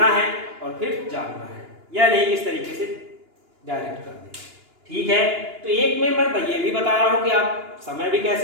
है और फिर जानना है, या नहीं इस तरीके से डायरेक्ट कर दें। ठीक है, तो एक में मैं ये भी बता रहा हूँ कि आप समय भी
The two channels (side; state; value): left; late; 2.9 ms